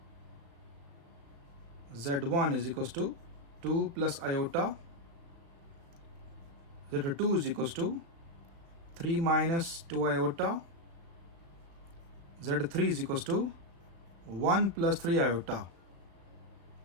Z1 is equals to 2 plus iota, Z2 is equals to 3 minus 2 iota, Z3 is equals to 1 plus 3 iota,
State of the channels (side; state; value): left; late; 36 ms